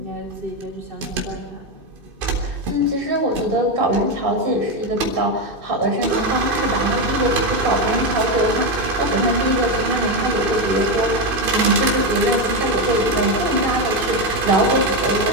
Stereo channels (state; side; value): late; left; 2.6 ms